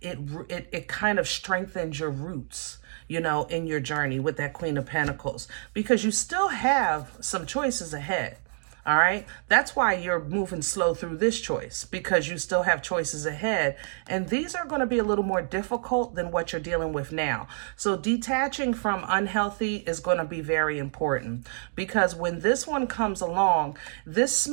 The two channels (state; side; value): silent; left; digital silence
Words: It kind of strengthens your roots, you know, in your journey with that Queen of Pentacles, because you still have some choices ahead. All right. That's why you're moving slow through this choice, because you still have choices ahead. And these are going to be a little more difficult than what you're dealing with now. So detaching from unhealthy is going to be very important, because when this one comes along, this